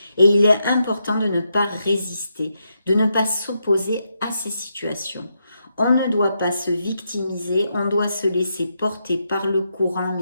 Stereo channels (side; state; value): both; inverted; correlation -0.82